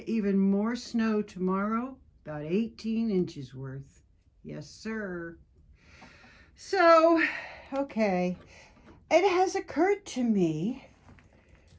even more snow tomorrow, about 18 inches worth. Yes, sir. So, okay, it has occurred to me,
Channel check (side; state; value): both; identical; correlation 1.00